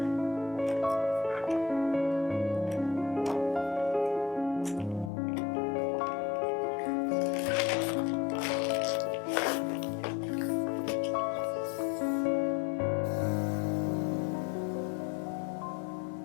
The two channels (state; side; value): drops out; right; at 5.1 s